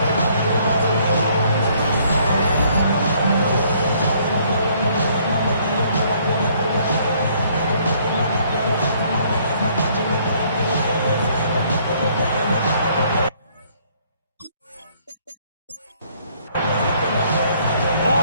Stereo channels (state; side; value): inverted; both; correlation -0.64